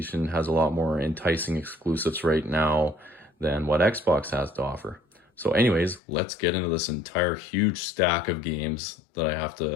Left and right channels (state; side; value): drops out; right; at 6.0 s